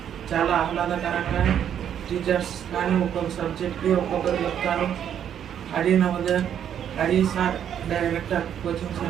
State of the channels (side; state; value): left; quieter; 9.3 dB